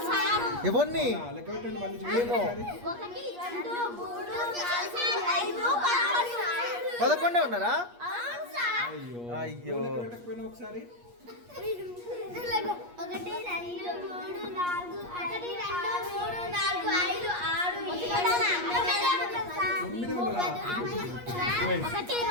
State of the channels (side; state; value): left; late; 8.4 ms